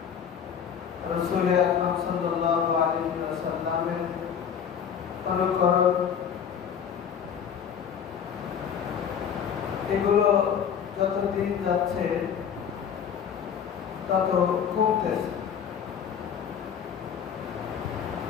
রাসূল আকরাম সাল্লাল্লাহু আলাইহি ওয়াসাল্লামের অনুকরণ এগুলো যত দিন যাচ্ছে তত কমতেছে।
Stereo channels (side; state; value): right; quieter; 7.8 dB